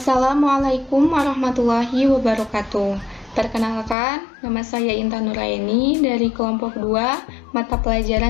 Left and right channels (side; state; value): right; drops out; at 4.0 s